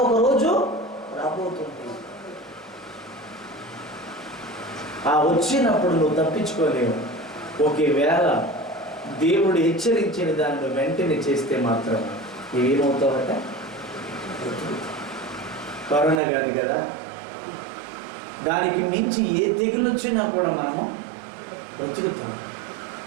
ఒక రోజు రాబోతుంది. ఆ వచ్చినప్పుడు నువ్వు తప్పించుకోలేవు. ఒకవేళ దేవుడు హెచ్చరించిన దాన్ని వెంటనే చేస్తే మాత్రం ఏమవుతావట? కరోనా కాదు కదా, దానికి మించి ఏ తెగులు వచ్చినా కూడా మనము బ్రతుకుతాం.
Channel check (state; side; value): drops out; left; at 16.2 s